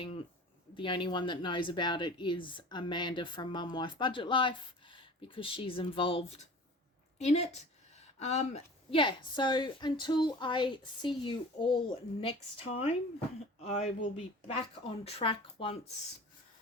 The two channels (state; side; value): normal; both; correlation 0.41